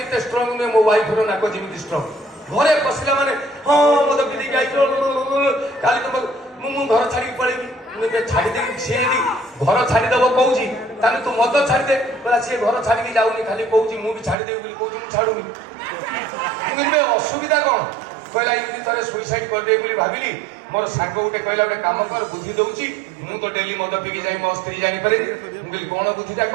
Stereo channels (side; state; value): left; drops out; at 14.4 s